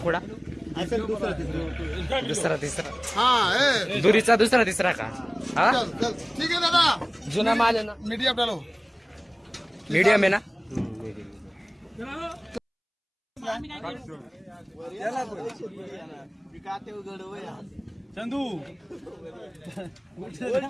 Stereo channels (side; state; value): both; identical; correlation 1.00